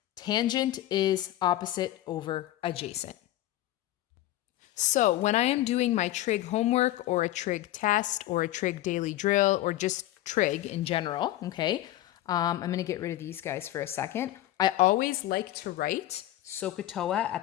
Tangent is opposite over adjacent. So when I am doing my trig homework or a trig test or a trig daily drill or just trig in general, okay, I'm going to get rid of these guys for a second. I always like to write SOHCAHTOA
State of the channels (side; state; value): right; quieter; 14.6 dB